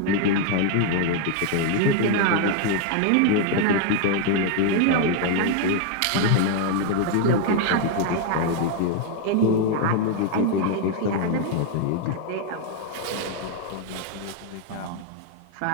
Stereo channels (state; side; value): different; both; correlation 0.00